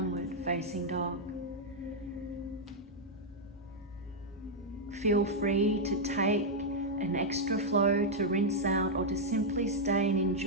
facing dog. Feel free to take an extra flow to rinse out, or to simply stay and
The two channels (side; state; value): both; normal; correlation -0.03